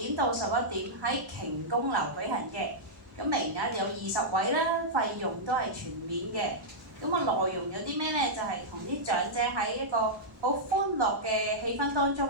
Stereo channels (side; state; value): both; normal; correlation -0.10